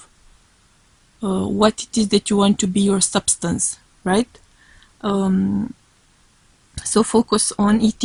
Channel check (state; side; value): identical; both; correlation 1.00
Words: What it is that you want to be your substance, right? So focus on